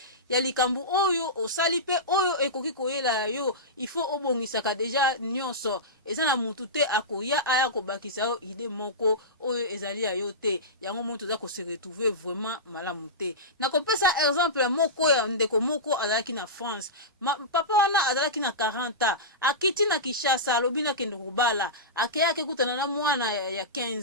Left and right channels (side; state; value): both; normal; correlation -0.17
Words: ya likambu oyo osali pe oyo ekoki koyela yo il faut obongisaka deja nyonso eza na mutu te akoya aya kobakisa yo ide moko oyo ezali ya yo te yango moto za ko se retrouver vraiment malamu te na kopesa exemple moko ya ndeko moko azalaki na France papa wana azalaki na 40 akiti na Kinshasa alobi na kende kobala akeyake kutana na mwana ya